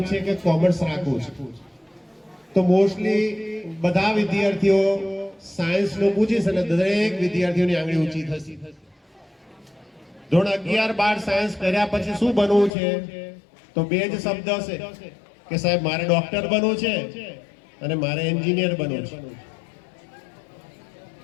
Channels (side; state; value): right; drops out; at 12.7 s